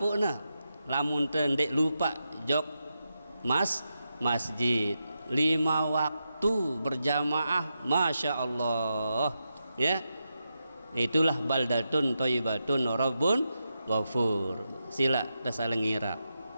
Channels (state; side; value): inverted; both; correlation -0.87